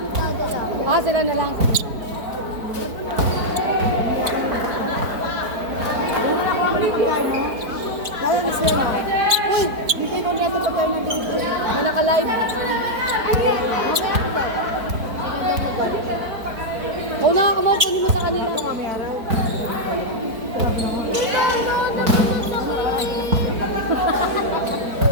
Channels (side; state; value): left; late; 4.5 ms